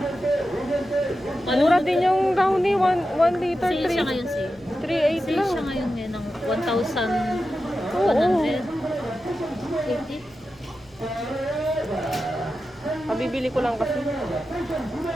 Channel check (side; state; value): right; noise; hum, 29 dB below the sound